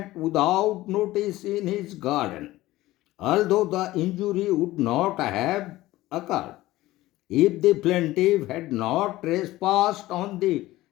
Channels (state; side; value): quieter; right; 17.1 dB